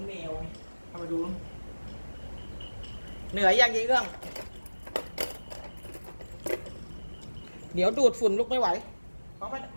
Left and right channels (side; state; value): both; inverted; correlation -1.00